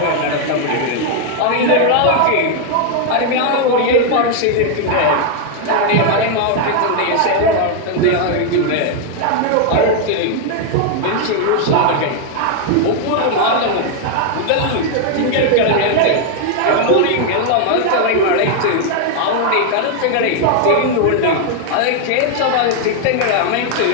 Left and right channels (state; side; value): different; both; correlation 0.00